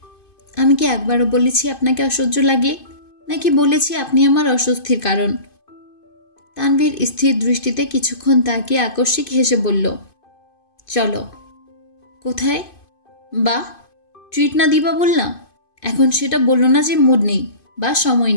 আমি কি একবারও বলেছি আপনাকে অসহ্য লাগে, নাকি বলেছি আপনি আমার অস্বস্তির কারণ? তানভীর স্থির দৃষ্টিতে কিছুক্ষণ তাকিয়ে আকস্মিক হেসে বলল, চলো। কোথায়? বাহ, ট্রিট না দিবা বললাম, এখন সেটা বললো না যে মুড নেই বা সময়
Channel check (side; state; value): right; late; 2.5 ms